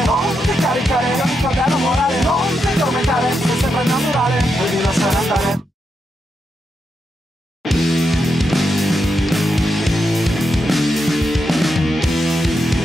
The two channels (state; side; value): normal; both; correlation 0.84